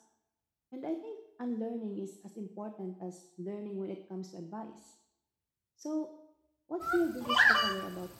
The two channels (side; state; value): both; identical; correlation 1.00